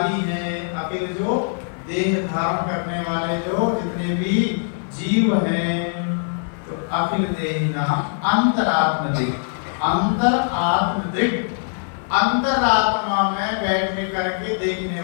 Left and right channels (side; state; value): right; silent; 60 dB below the other